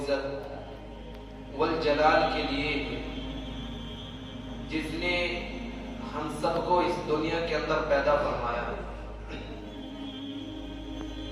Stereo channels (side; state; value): both; identical; correlation 1.00